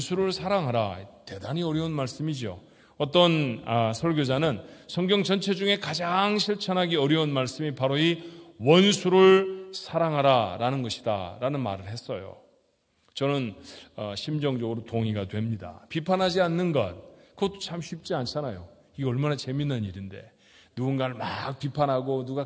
사랑하라, 대단히 어려운 말씀이죠. 어떤 설교자는 성경 전체 중에 가장 실천하기 어려운 말씀이 바로 이 원수를 사랑하라 라는 것이다 라는 말을 했어요. 저는 심정적으로 동의가 됩니다. 비판하지 않는 것, 그것도 참 쉽지 않잖아요. 이게 얼마나 재밌는 일인데 누군가를 막 비판하고 누가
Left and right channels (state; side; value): identical; both; correlation 1.00